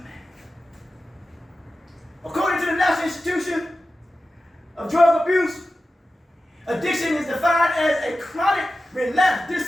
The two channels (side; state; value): both; normal; correlation 0.94